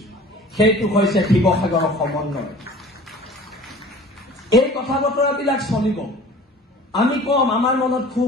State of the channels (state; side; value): normal; both; correlation 0.45